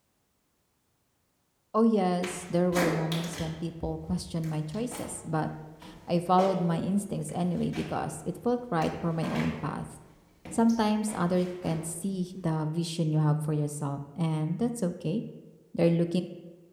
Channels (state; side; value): identical; both; correlation 1.00